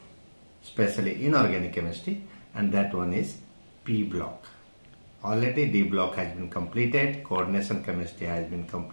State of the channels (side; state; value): both; inverted; correlation -1.00